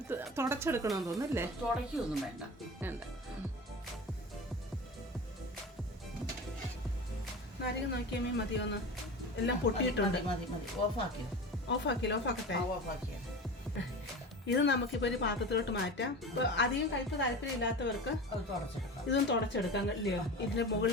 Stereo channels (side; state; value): both; normal; correlation 0.31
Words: തുടച്ചെടുക്കണമെന്ന് തോന്നുന്നല്ലേ? തുടയ്ക്കൊന്നും വേണ്ട. നാരങ്ങ നോക്കിയാൽ മതിയോന്ന് എല്ലാം പൊട്ടിയിട്ടുണ്ട്. മതി ഓഫാക്കിയ ഇത് നമുക്കിപ്പോൾ ഒരു പാത്രത്തിലോട്ട് മാറ്റാം. ഇപ്പോൾ അധികം കയ്പ് താല്പര്യമില്ലാത്തവർക്ക് ഇതും തുടച്ചെടുക്കാം ഇല്ലയോ? ഇതിൻ്റെ